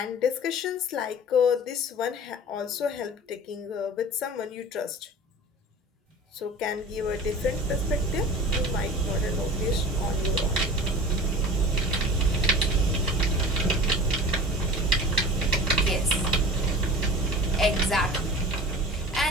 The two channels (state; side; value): normal; both; correlation 0.37